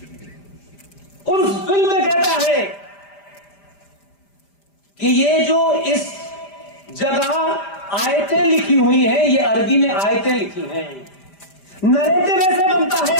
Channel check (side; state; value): right; late; 5.0 ms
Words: उस फिल्म में कहता है कि ये जो इस जगह आयतें लिखी हुई हैं, ये अरबी में आयतें लिखी हैं। नरेटिव ऐसे बनता है,